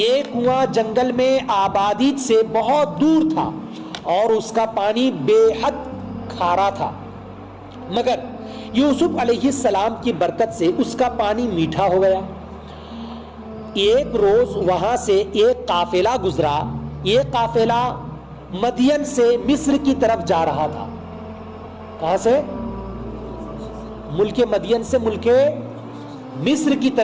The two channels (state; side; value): identical; both; correlation 1.00